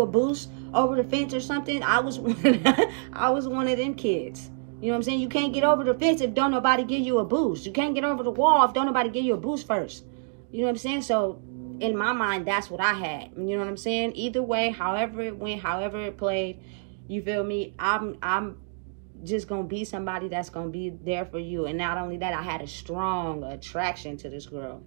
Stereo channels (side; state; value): left; silent; digital silence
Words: a boost over the fence or something? I was one of them kids. You know what I'm saying? You can't get over the fence if don't nobody give you a boost. You can't get over the wall if don't nobody give you a boost first. You know what I'm saying? So in my mind, that's what I had. You know what I'm saying? Either way, however it went, however it played, you feel me, I'm just gonna be somebody that's gonna be there for you. And not only that, I had a strong attraction to this girl.